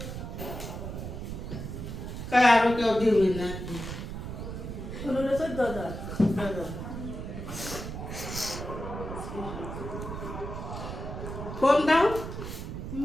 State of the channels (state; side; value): noise; right; rumble, 7 dB below the sound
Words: কারো কেউ দিবি না 15-14,000 ফোন দাও